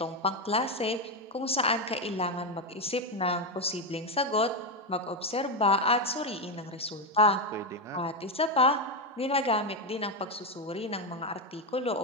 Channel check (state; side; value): normal; both; correlation 0.08